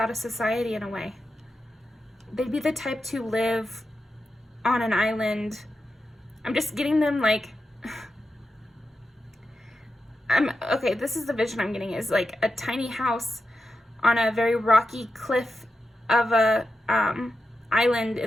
of society in a way. They'd be the type to live on an island. I'm just getting them like... Okay, this is the vision I'm getting, is like a tiny house on a very rocky cliff of a island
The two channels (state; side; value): normal; both; correlation 0.90